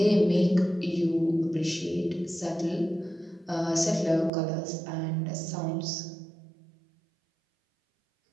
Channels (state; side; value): drops out; left; at 4.3 s